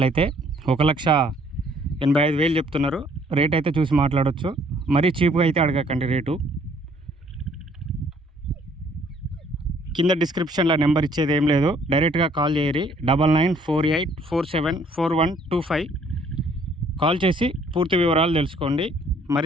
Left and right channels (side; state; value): both; normal; correlation 0.62